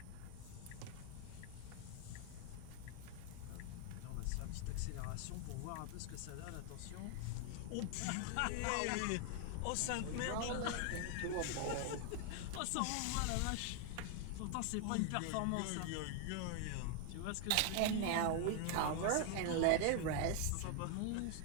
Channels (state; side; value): different; both; correlation 0.00